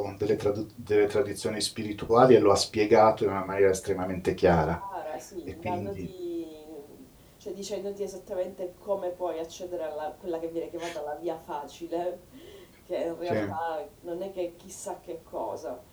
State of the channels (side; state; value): both; identical; correlation 1.00